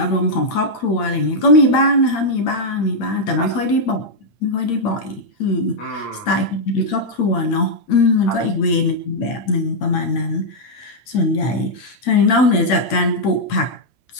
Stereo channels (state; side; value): late; right; 8.7 ms